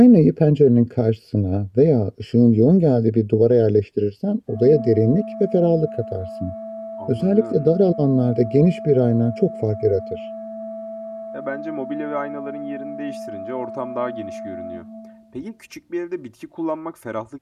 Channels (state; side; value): identical; both; correlation 1.00